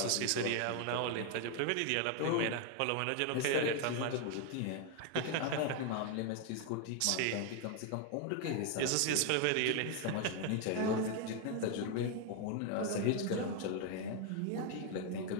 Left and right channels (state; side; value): different; both; correlation 0.01